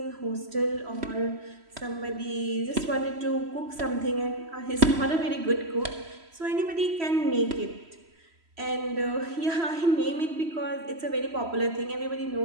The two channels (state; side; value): late; left; 3.0 ms